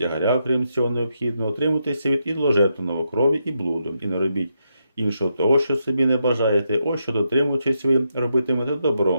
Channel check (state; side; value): inverted; both; correlation -0.82